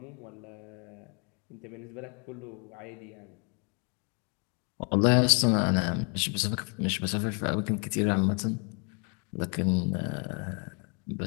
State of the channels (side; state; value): right; quieter; 34.3 dB